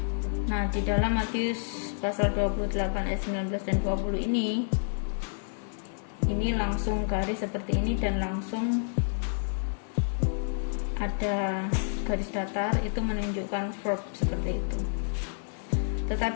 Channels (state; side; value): silent; right; digital silence